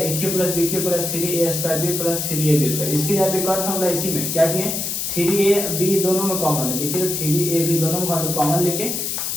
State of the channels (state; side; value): noise; left; hiss, 2 dB below the sound